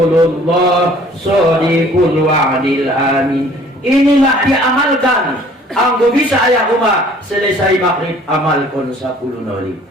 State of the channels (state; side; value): normal; both; correlation 0.54